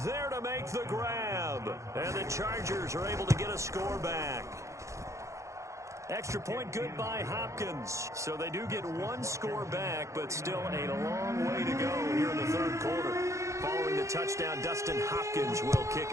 there to make the grab. And the Chargers are able to get a score back. Extra point good by Hopkins. So they do get 1 score back, but still a long way to go here in the 3rd quarter. Following the touchdown, Dustin Hopkins will kick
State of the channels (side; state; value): left; late; 0.15 ms